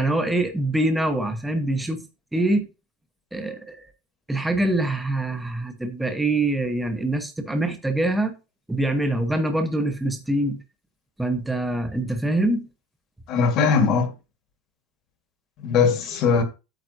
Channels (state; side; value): normal; both; correlation 0.59